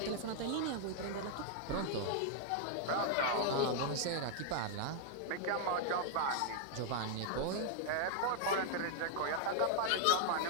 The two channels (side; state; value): both; different; correlation 0.00